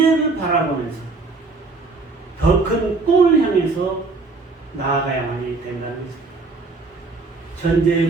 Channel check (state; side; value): quieter; left; 3.8 dB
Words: 바라보면서 더 큰 꿈을 향해서 나아가야만이 된다는 것입니다. 현재의